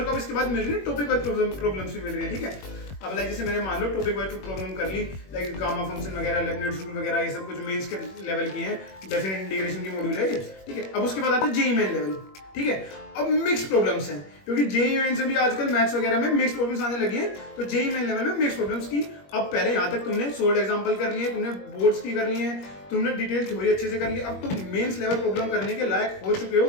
को अब इसके बाद मिल रही है टॉपिक वाइज प्रॉब्लम्स भी मिल रही है, ठीक है। अब लाइक जैसे मैंने मान लो टॉपिक वाइज प्रॉब्लम कर ली, लाइक गामा फंक्शन वगैरह, लेबनिज़ रूल वगैरह, ये सब कुछ मेंस के लेवल की है, डेफिनेट इंटीग्रेशन की मॉड्यूल है, ठीक है। अब उसके बाद आता है जेईई मेन लेवल, ठीक है। अब मिक्स प्रॉब्लम्स हैं, क्योंकि जेईई मेन से भी आजकल मैथ्स वगैरह में मिक्स प्रॉब्लम्स आने लगी हैं, तो जेईई मेन लेवल में मिक्स प्रॉब्लम्स की अब पहले यहाँ तक तुमने सोल्ड एग्जांपल कर लिए, तुमने बोर्ड्स की कर ली है, तुमने डिटेल थ्योरी अच्छे से कर ली, अब तुम मेंस लेवल प्रॉब्लम करने के लायक हो चुके हो,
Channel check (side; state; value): right; late; 21 ms